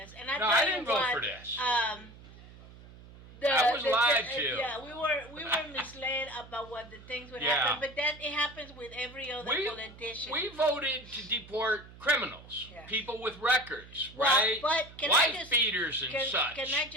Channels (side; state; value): right; noise; hum, 19 dB below the sound